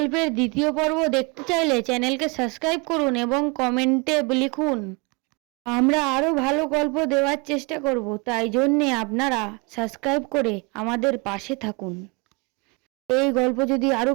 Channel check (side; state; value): left; quieter; 29.5 dB